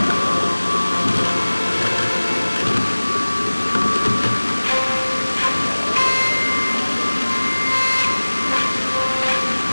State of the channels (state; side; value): inverted; both; correlation -1.00